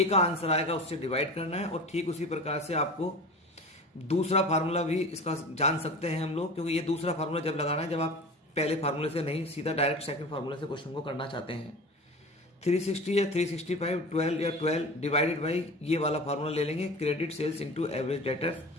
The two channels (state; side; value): normal; both; correlation 0.35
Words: का आंसर आएगा उससे डिवाइड करना है। और ठीक उसी प्रकार से आपको दूसरा फार्मूला भी इसका जान सकते हैं हम लोग, क्योंकि ये दूसरा फार्मूला जब लगाना है जब आप पहले फार्मूले से नहीं, सीधा डायरेक्ट सेकंड फार्मूले से क्वेश्चन को करना चाहते हैं। 360 या 365, 12 या 12 डिवाइडेड बाई ये वाला फार्मूला ले लेंगे, credit sales into average